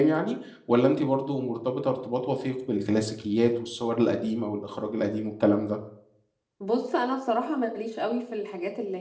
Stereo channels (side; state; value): both; identical; correlation 1.00